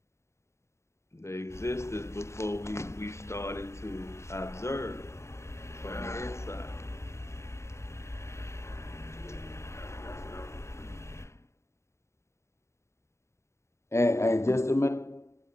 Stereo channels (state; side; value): late; right; 0.14 ms